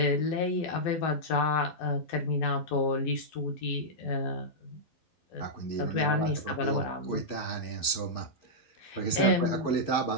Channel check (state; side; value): late; right; 12 ms